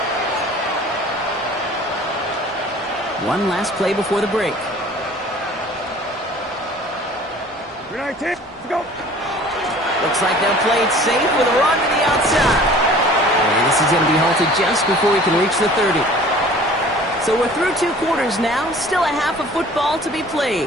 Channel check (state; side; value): normal; both; correlation 0.47